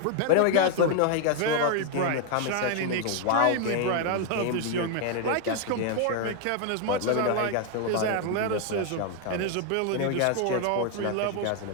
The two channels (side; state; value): both; different; correlation 0.00